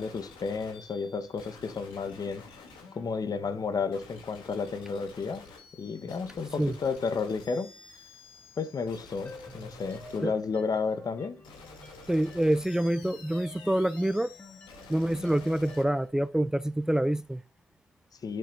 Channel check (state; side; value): normal; both; correlation 0.89